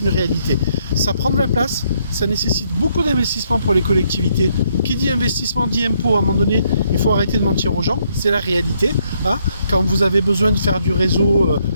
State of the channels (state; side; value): inverted; both; correlation -0.72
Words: réalité. Ça prend de la place, ça nécessite beaucoup d'investissement pour les collectivités. Qui dit investissement dit impôt. À un moment donné, il faut arrêter de mentir aux gens. C'est la réalité. Hein. Quand vous avez besoin de faire du réseau